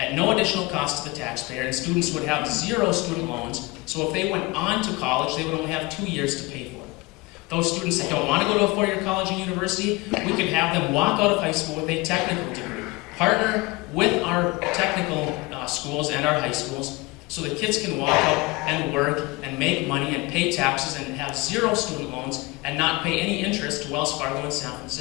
no additional cost to the taxpayer, and students would have 0 student loans, so if they went on to college, they would only have 2 years to pay for it. Those students that don't want to go to a 4-year college and university, we can have them walk out of high school with a technical degree, Partner with our technical schools and our high schools so that kids can walk out and work and make money and pay taxes and have 0 student loans and not pay any interest to Wells Fargo in San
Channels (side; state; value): right; quieter; 23.7 dB